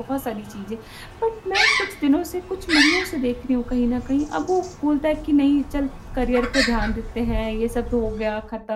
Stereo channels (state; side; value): identical; both; correlation 1.00